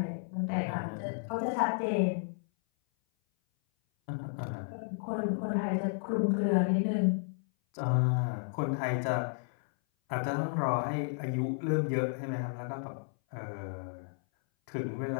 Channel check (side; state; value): right; silent; 56 dB below the other